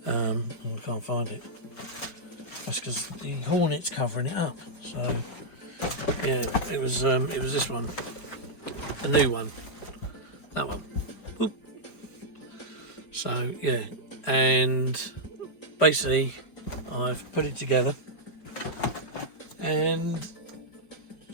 I can't find it. That's because the Hornet's covering it up. So yeah, it was this one. A new one, that one. Oop. So yeah, and basically I've put it together and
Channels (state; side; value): late; right; 5.4 ms